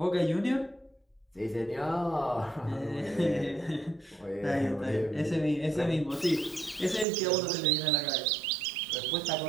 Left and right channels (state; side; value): drops out; left; at 7.1 s